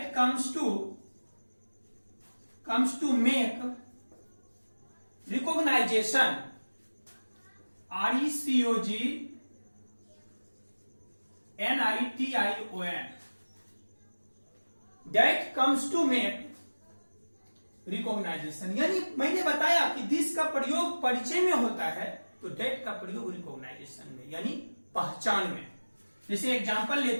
to make recognization, RECOGNITION, that comes to make recognization. यानी मैंने बताया कि दिस का प्रयोग परिचय में होता है तो डेट का प्रयोग रिकॉग्नाइजेशन में, यानी पहचान में। जैसे एग्जांपल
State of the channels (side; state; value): both; inverted; correlation -1.00